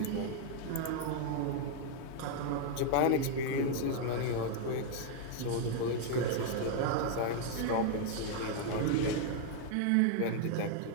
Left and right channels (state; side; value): different; both; correlation 0.00